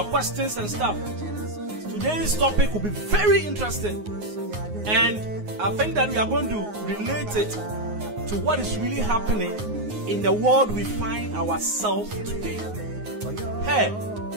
questions and stuff. Today's topic will be very interesting. And I think that we are going to relate it to what is really happening in the world we find ourselves today. Hey,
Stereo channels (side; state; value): left; late; 9.5 ms